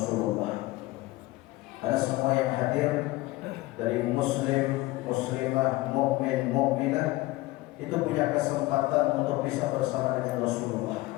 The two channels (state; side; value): quieter; right; 19.4 dB